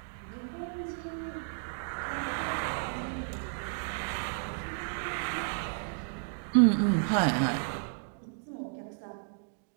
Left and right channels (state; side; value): silent; left; digital silence